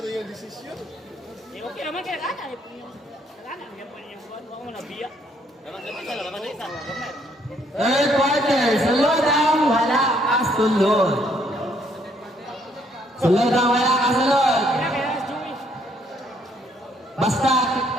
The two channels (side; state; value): both; normal; correlation 0.68